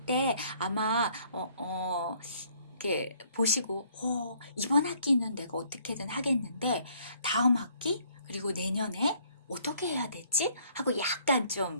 때 아마 이렇게 보시고 이번 학기는 내가 어떻게든 하겠는데 다음 학기 그리고 내년에 어떻게 해야 되지? 하고 약간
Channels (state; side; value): inverted; both; correlation -0.63